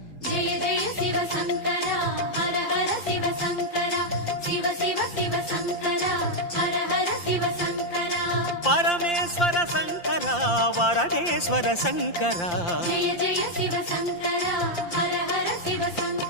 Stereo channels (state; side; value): late; right; 5.8 ms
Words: ஜெய ஜெய சிவசங்கரா ஹர ஹர சிவசங்கரா சிவ சிவ சிவசங்கரா ஹர ஹர சிவசங்கரா பரமேஸ்வர சங்கரா வரதேஸ்வர சங்கரா ஜெய ஜெய சிவசங்கரா ஹர ஹர